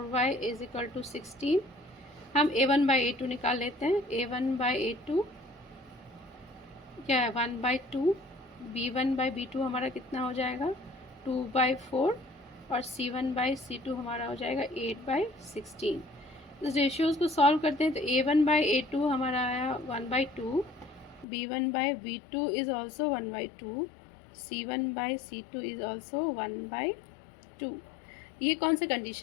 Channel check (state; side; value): drops out; right; at 21.2 s